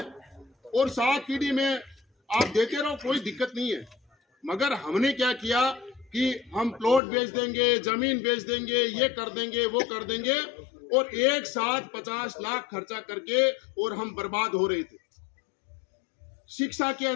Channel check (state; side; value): drops out; right; at 7.0 s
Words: और 7 पीढ़ी में आप देते रहो, कोई दिक्कत नहीं है। मगर हमने क्या किया कि हम प्लॉट बेच देंगे, जमीन बेच देंगे, ये कर देंगे, वो कर देंगे, और एक साथ 50 लाख खर्चा करके और हम बर्बाद हो रहे थे। शिक्षा के